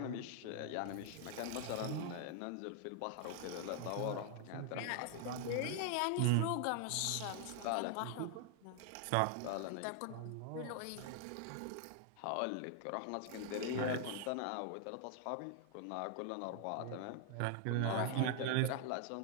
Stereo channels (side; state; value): both; different; correlation 0.00